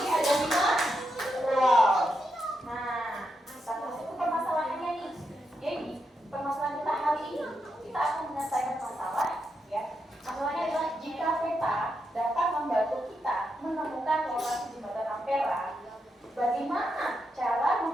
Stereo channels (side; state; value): both; normal; correlation 0.84